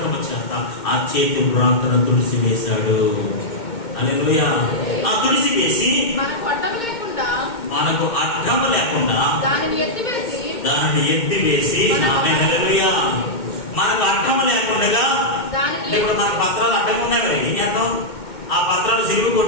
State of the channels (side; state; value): right; late; 2.2 ms